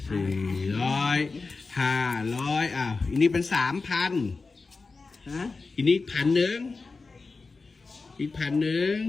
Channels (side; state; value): right; quieter; 4.1 dB